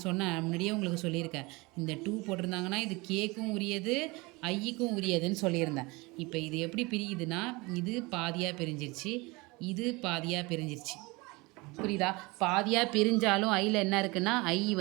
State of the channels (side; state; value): left; quieter; 24.5 dB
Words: முன்னாடியே உங்களுக்கு சொல்லியிருக்கேன். இந்த 2 போட்டிருந்தாங்கன்னா இது கேக்கும் உரியது, ஐக்கும் உரியதுன்னு சொல்லியிருந்தேன். இப்போ இது எப்படி பிரியுதுன்னா, இது பாதியாக பிரிஞ்சிருச்சு, இது பாதியாக பிரிஞ்சிருச்சு. புரியுதா? பாதியாக பிரிஞ்சாலும் ஐயில் என்ன இருக்குன்னா, ஐ